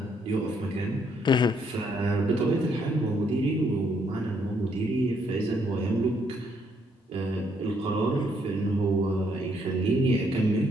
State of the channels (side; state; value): both; normal; correlation 0.71